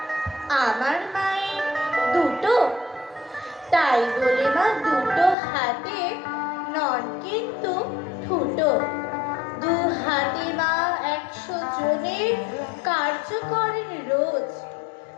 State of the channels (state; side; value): drops out; right; at 5.4 s